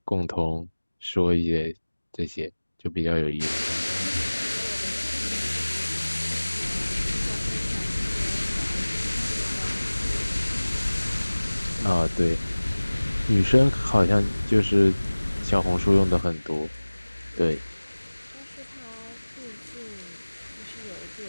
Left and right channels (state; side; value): inverted; both; correlation -1.00